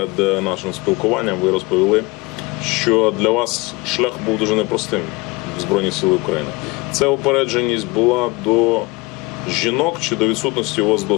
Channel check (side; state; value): right; quieter; 24.2 dB